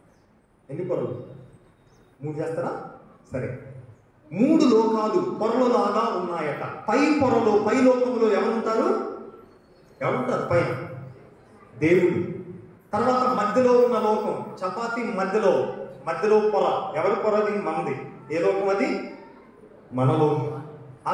ఎన్ని పొరలు? 3 చేస్తారా? సరే, 3 లోకాలు పొరలలాగా ఉన్నాయట. పై పొరలో, పై లోకంలో ఎవరుంటారు? పైన దేవుడు. తర్వాత మధ్యలో ఉన్న లోకం, చపాతీ మధ్యలో పొర, ఎవరి పొరది? మనది. ఏ లోకం అది? మన లోకం. ఆ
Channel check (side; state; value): both; identical; correlation 1.00